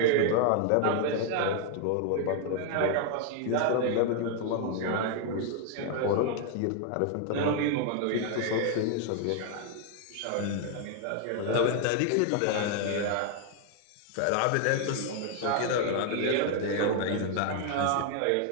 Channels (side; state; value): both; different; correlation 0.00